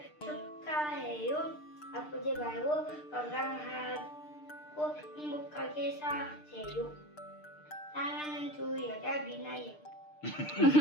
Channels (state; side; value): late; right; 6.6 ms